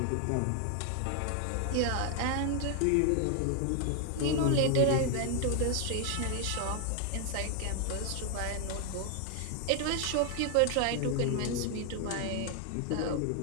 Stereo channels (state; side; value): different; both; correlation 0.00